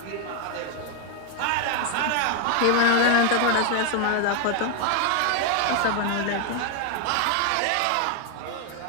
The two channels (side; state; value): both; different; correlation 0.00